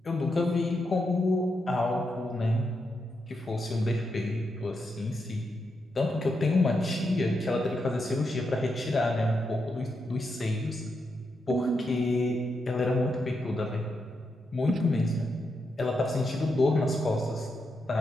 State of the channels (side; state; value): both; normal; correlation 0.84